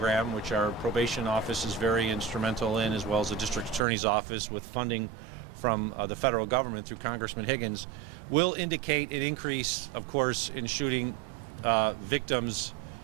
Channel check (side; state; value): left; drops out; at 3.8 s